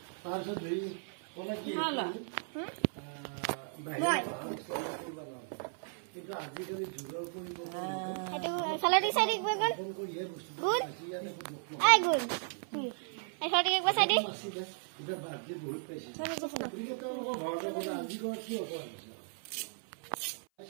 তাৰপিছত ধৰি কলা কি হালা কিন্তু আজিকালি যুগৰ পৰিৱৰ্তন সেইটো চালাডি চাইডি গগন গুড আই গুড এই ছটি একবাৰ সাইডি এটা বাজে বহুত পাইছে কিন্তু তেওঁলোকৰ ঘৰতে গ'লে আজি ঘৰ কি হ'ব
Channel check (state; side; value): silent; left; 54 dB below the other